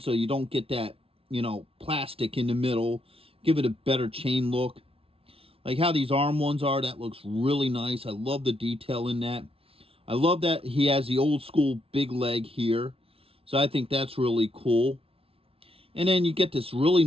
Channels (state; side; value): late; left; 0.27 ms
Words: so you don't get that, plastic in the middle. Give it a better chain look. Like how these arm ones are, that looks really nice. I love the detail in that. I love that he has the old school big leg here. So I think that's really cool. And then you get this really